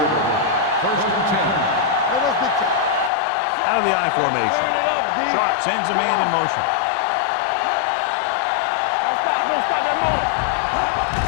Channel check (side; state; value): right; drops out; at 3.1 s